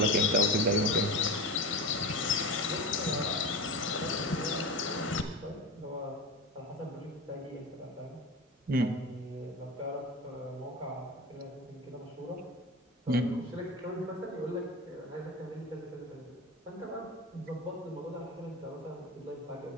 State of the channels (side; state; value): both; normal; correlation 0.25